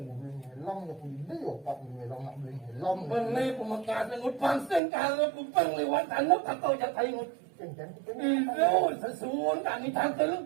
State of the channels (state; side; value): drops out; left; at 4.8 s